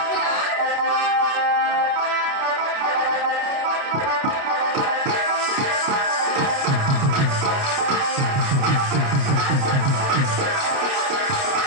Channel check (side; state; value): left; late; 29 ms